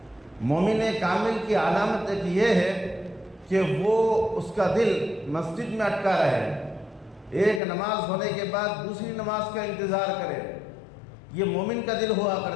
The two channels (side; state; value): right; drops out; at 7.6 s